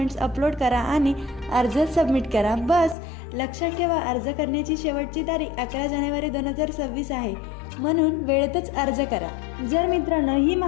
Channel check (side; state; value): right; drops out; at 3.0 s